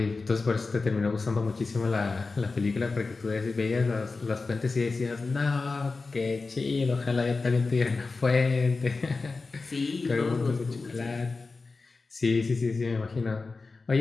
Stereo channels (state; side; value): quieter; right; 4.0 dB